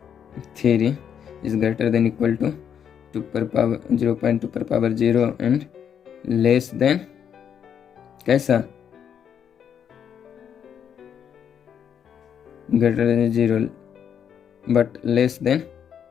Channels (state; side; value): quieter; right; 8.3 dB